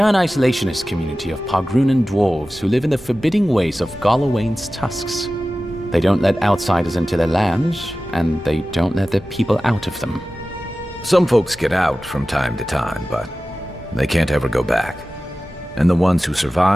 an isolationist community of Pagrunan dwarves who live in the forbidding ways of Galawain's tusks. They don't let outsiders into their lands, and they don't let their people out of them. Some folks get out from time to time, but they can't ever go back. And the ones who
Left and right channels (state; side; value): normal; both; correlation 0.95